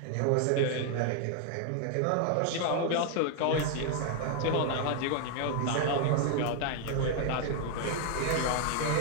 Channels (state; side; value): different; both; correlation 0.00